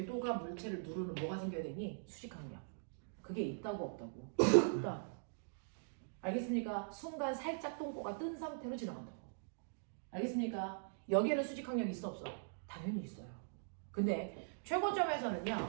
물체를 누르는 뭐가 생겨야 되니? 수직항력. 그게 있다고 없다고? 있다. 알겠습니까? 순간 살짝 똥꼬가 뜬 상태로 지나간다고. 알겠습니까? 여기에는 수직항력이 있어 없어? 당연히 있어요. 근데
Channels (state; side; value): silent; left; digital silence